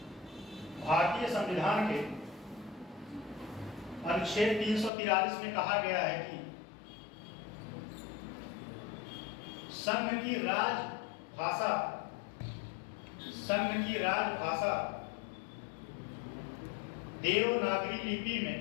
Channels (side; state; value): right; drops out; at 4.9 s